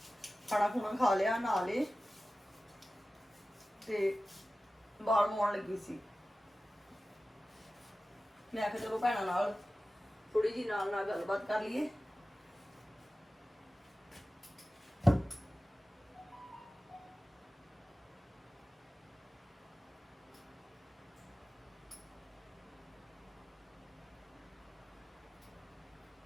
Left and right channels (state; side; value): normal; both; correlation 0.95